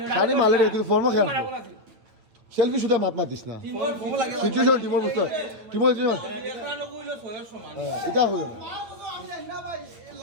শানি মালে রে কিন্তু ফর্ম খেয়াল সেলফি শুধু মাত দিস না সিচুয়েশন টিমর বুঝতে টিমর এটা হইল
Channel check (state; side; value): late; left; 8.9 ms